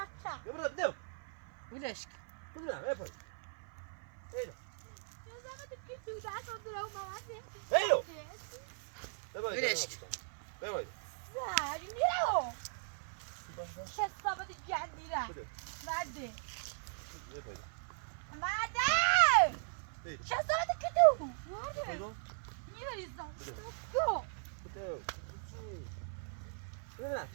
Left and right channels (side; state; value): left; silent; 52 dB below the other